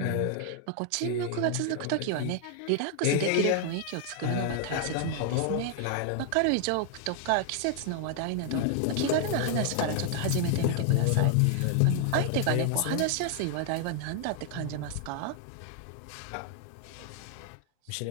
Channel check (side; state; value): both; different; correlation 0.00